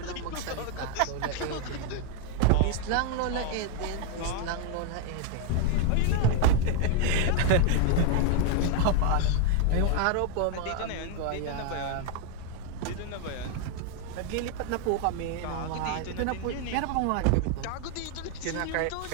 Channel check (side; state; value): both; different; correlation 0.00